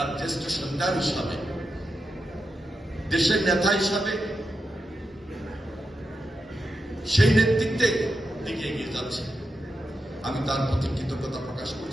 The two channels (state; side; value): normal; both; correlation 0.88